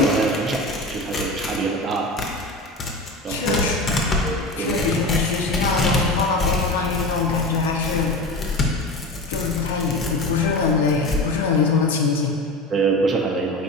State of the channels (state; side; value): normal; both; correlation 0.28